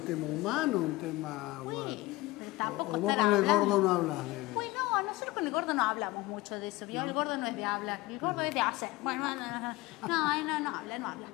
tema humano, un tema... Sí, pero tampoco o vos con el gordo no hablas de... Pues no, nosotros con el gordo no hablamos mucho de eso, ¿vio? El gordo no es de hablar, el gordo es de hacer. Bueno, no habla. Bueno.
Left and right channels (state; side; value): quieter; right; 19.6 dB